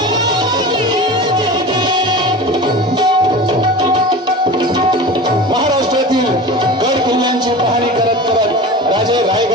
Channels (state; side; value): normal; both; correlation 0.33